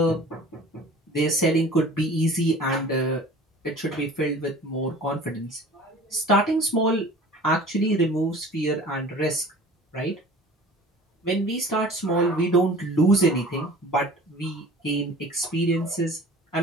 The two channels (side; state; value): both; normal; correlation 0.44